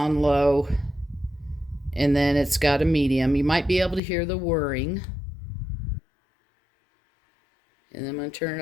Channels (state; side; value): drops out; right; at 4.0 s